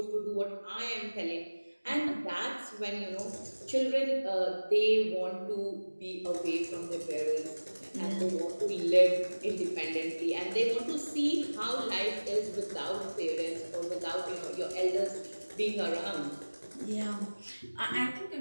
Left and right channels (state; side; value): inverted; both; correlation -1.00